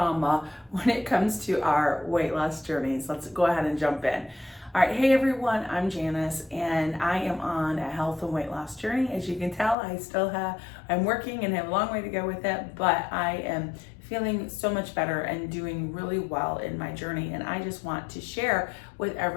when it comes to our weight loss journeys. Let's go ahead and jump in. All right, hey everyone, I'm Janice and I am on a health and weight loss journey. As you can tell, I'm working and have a long way to go with it, but I am feeling so much better and doing really well in my journey. And I just want to share with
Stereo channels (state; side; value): drops out; right; at 9.8 s